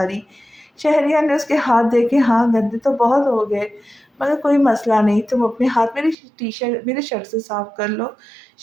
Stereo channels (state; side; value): drops out; left; at 6.2 s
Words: شہریار نے اس کے ہاتھ دیکھے۔ ہاں، گندے تو بہت ہو گئے مگر کوئی مسئلہ نہیں، تم اپنے ہاتھ میرے شرٹ سے صاف کر لو۔